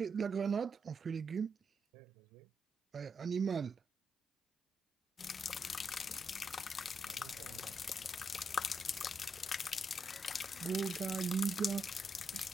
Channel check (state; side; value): normal; both; correlation 0.82